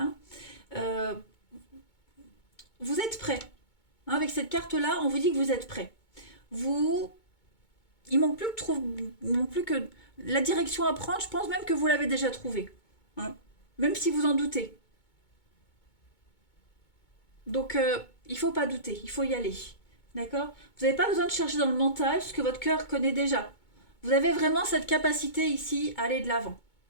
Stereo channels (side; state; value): right; late; 2.2 ms